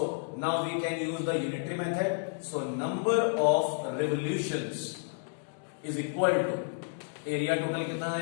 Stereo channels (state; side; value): silent; right; digital silence